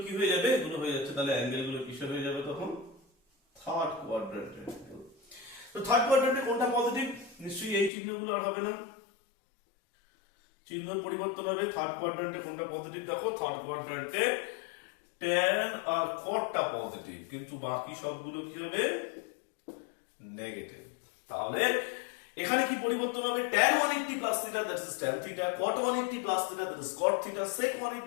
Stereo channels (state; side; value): drops out; right; at 7.9 s